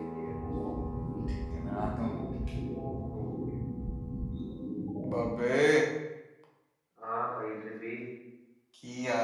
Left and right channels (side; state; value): both; identical; correlation 1.00